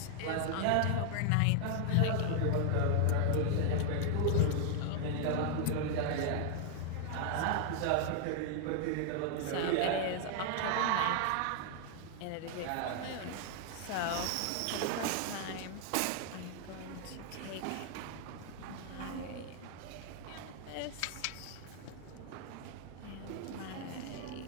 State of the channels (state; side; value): different; both; correlation 0.00